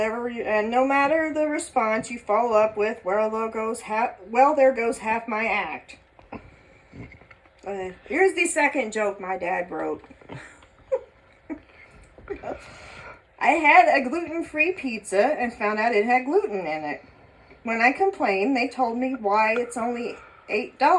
no matter the response, you follow up with, well, there goes half my act. Here's the second joke my dad wrote. I had a gluten-free pizza and found out it had gluten in it. When I complained, they told me why it's only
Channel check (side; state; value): both; identical; correlation 1.00